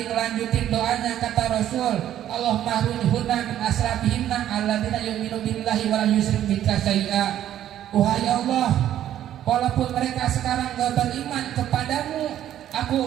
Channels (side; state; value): left; quieter; 11.6 dB